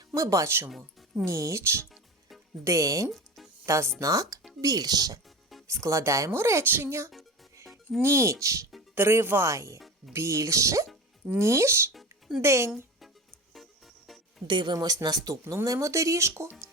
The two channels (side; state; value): both; normal; correlation 0.30